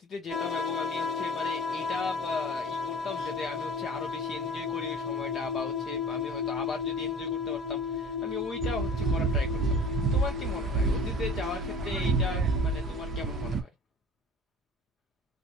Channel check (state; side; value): normal; both; correlation 0.42